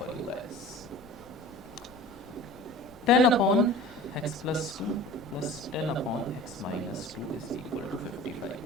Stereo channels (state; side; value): noise; left; rumble, 25 dB below the sound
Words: you guys. 10 upon x plus 2 plus 10 upon x minus 2 is equal to 55